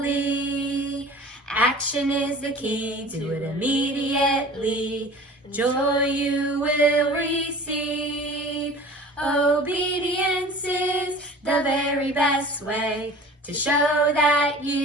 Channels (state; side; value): normal; both; correlation 0.42